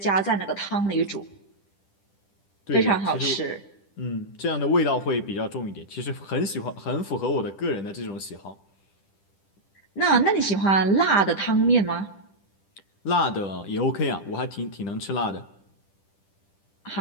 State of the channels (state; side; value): late; right; 10 ms